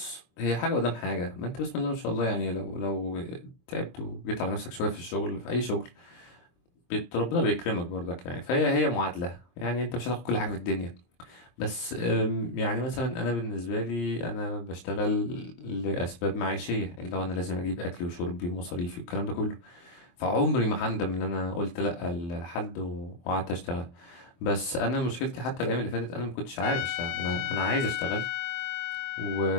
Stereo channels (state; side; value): late; right; 23 ms